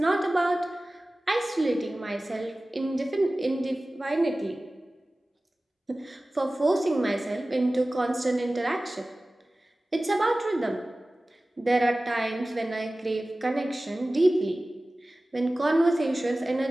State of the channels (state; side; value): normal; both; correlation 0.97